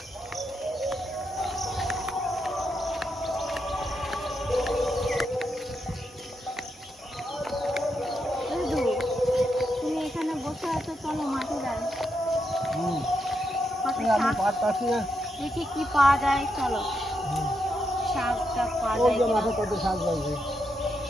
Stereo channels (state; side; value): normal; both; correlation 0.82